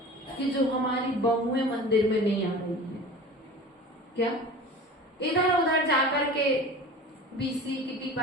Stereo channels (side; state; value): both; normal; correlation 0.37